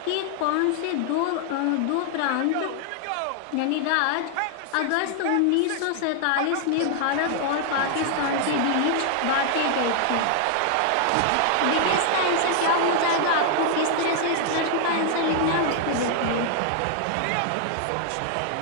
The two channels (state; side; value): different; both; correlation 0.00